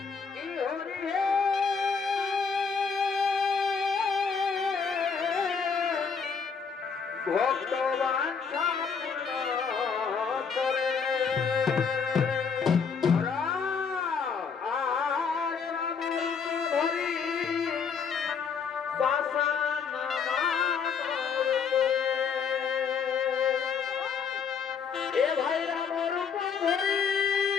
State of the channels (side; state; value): right; quieter; 6.0 dB